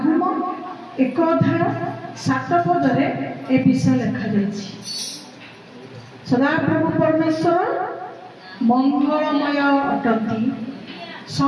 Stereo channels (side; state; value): both; identical; correlation 1.00